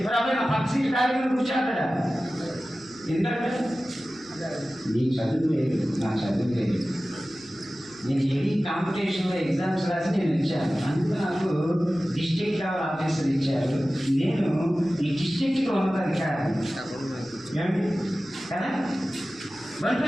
మరి అబ్బాయి నా పక్క సీట్ కార్యక్రమం కూర్చోతాడా? ఎందుకంటే నీకు చదువు లేదు, నా చదువు లేదు. నేను హెవీ కాంపిటీషన్లో ఎగ్జామ్స్ రాసి నేను ఇచ్చాను, అందుకు నాకు డిస్ట్రిక్ట్ లెవెల్ ఆఫీసర్ ఇచ్చారు. నేను ఈ డిస్ట్రిక్ట్కి ఉన్నతాధికారి ఏమిటి కదా.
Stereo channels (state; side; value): noise; right; hum, 29 dB below the sound